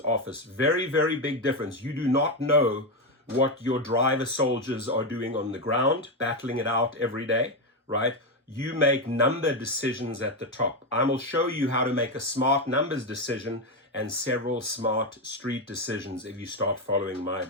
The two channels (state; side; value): normal; both; correlation 0.09